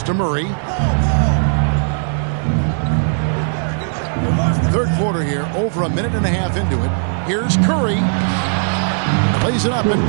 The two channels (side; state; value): left; silent; 68 dB below the other